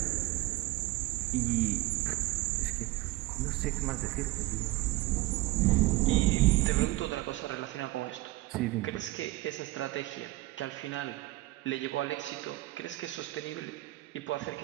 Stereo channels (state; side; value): quieter; left; 18.8 dB